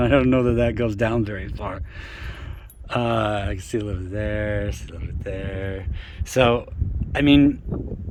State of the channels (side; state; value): both; identical; correlation 1.00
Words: that goes down very far. I can see a little bit there, see a little bit there. So, I mean,